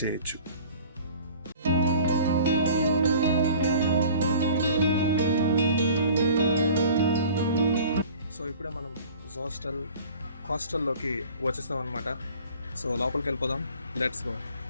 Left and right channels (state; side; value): inverted; both; correlation -0.46